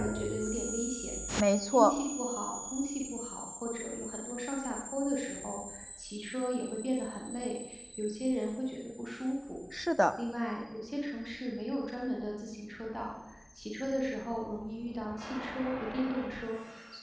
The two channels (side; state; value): both; identical; correlation 1.00